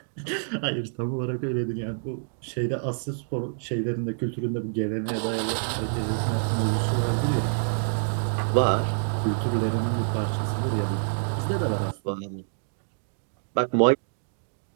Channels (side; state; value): left; silent; digital silence